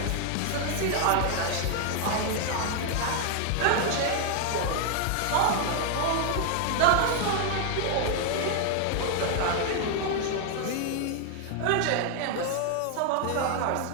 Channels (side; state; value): both; different; correlation 0.00